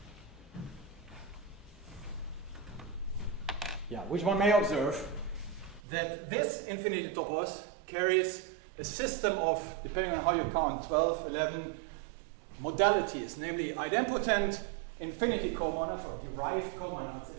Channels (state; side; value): drops out; left; at 5.8 s